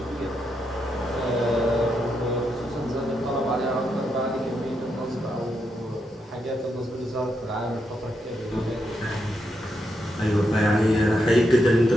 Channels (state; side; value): normal; both; correlation 0.82